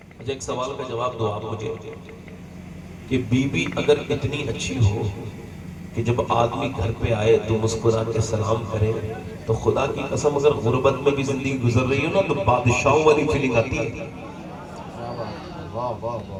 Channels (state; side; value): identical; both; correlation 1.00